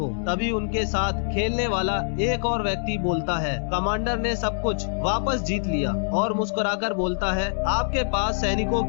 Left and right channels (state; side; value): silent; right; digital silence